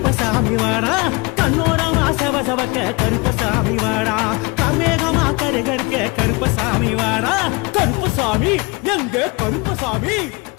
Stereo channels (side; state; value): right; quieter; 26.5 dB